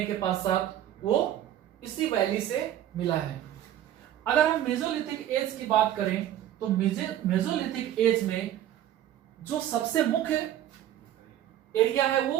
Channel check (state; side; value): quieter; left; 11.9 dB